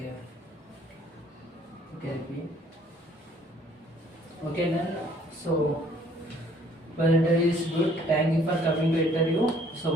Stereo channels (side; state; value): both; normal; correlation 0.60